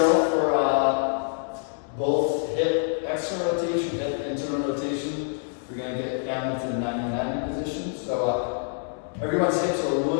for both hip external rotation, hip internal rotation. We're going to get down into the 90-90 position. So everyone's hips are a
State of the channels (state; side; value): silent; right; 61 dB below the other